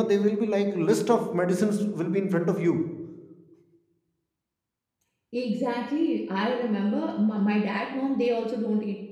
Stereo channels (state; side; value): identical; both; correlation 1.00